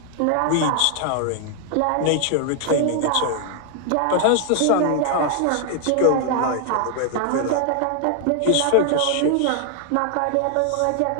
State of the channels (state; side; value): different; both; correlation 0.00